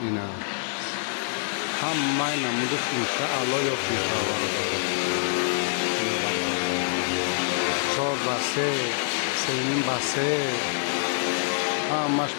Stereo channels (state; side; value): silent; right; digital silence